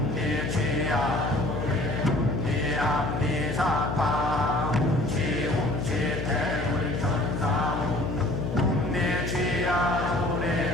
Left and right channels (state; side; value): noise; left; hum, 3 dB below the sound